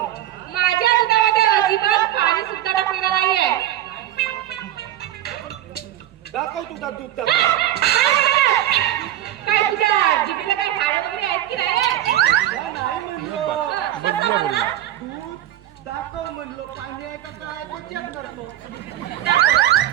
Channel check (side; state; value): left; quieter; 13.0 dB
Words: माझ्या दुधामध्ये अजिबात पाणी सुद्धा टाकलेलं नाही आहे. दाखव तुझा दूध काय तुझ्या जिभेला काय हाड वगैरे आहेत की नाही? नाही म्हणलो. कसं म्हणला? दूध दाखव म्हणलो. पाणी आहे का काय ते चेक करतो.